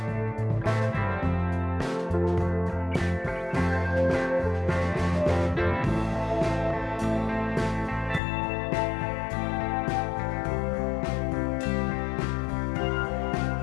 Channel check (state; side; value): drops out; right; at 8.2 s